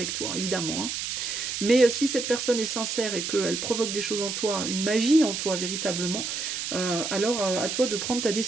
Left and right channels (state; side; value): noise; right; hiss, 3 dB below the sound